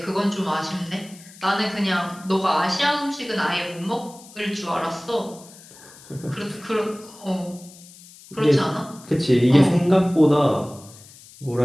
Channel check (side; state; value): left; noise; hiss, 21 dB below the sound